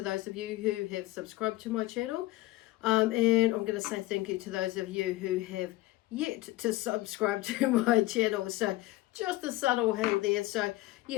those of you who have subscribed to my channel. And I'm going to say thank you to those of you who have yet to subscribe to my channel. So just a subtle hint there. So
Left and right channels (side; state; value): right; quieter; 18.3 dB